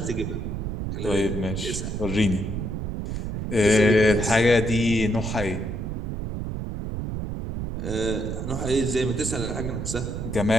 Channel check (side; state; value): right; noise; rumble, 4 dB below the sound